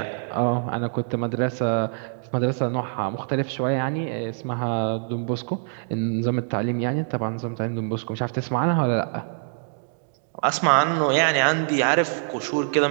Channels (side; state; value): left; silent; digital silence